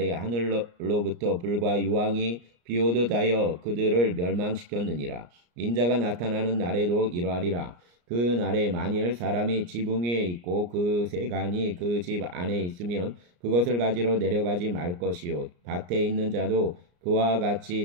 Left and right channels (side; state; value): left; late; 34 ms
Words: 하늘로부터 불과 유황이 비오듯 하여 그들을 멸망시켰느니라. 인자가 나타나는 날에도 이러하리라. 그 날에 만일 사람이 지붕 위에 있고 그 세간이 그 집 안에 있으면 그것을 가지러 내려가지 말 것이요 밭에 있는 자도 그와